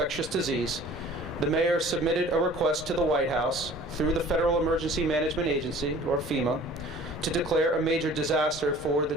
disease, the mayor submitted a request to the White House through the Federal Emergency Management Agency, or FEMA, to declare a major disaster for the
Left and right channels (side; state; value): both; normal; correlation 0.48